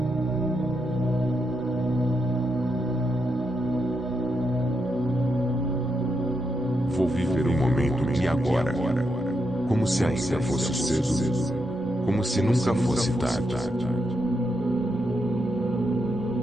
Vou viver o momento de agora, como se ainda fosse cedo, como se nunca fosse tarde.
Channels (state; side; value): normal; both; correlation 0.83